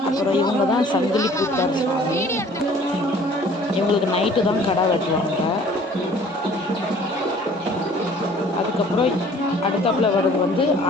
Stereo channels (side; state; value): both; normal; correlation 0.52